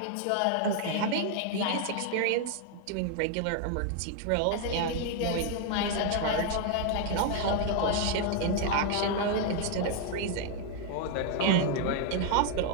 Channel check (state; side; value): different; both; correlation 0.00